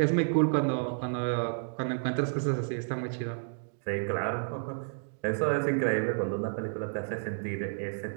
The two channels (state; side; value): silent; left; digital silence